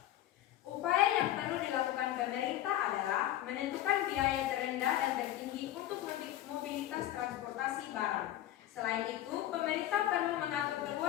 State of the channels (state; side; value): quieter; right; 13.3 dB